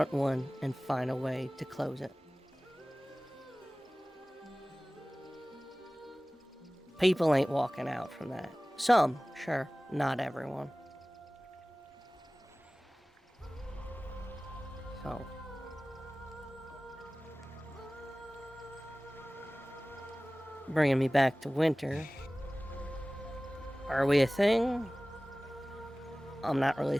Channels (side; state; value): both; normal; correlation 0.98